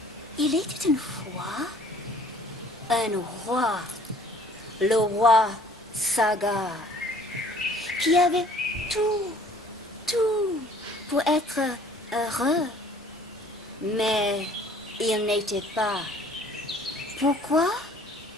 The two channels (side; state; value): both; normal; correlation 0.54